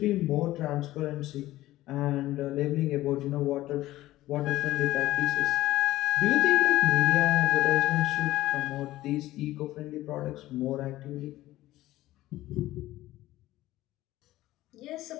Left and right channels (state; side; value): quieter; right; 16.0 dB